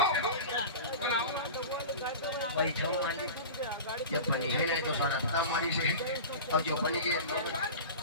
हो बनाओ बैठो मालिक जब बनी है नहीं तो सारा हमारी से और जो बनी के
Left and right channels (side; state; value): both; inverted; correlation -0.31